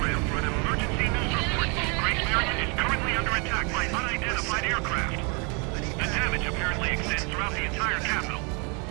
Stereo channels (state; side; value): quieter; left; 32.9 dB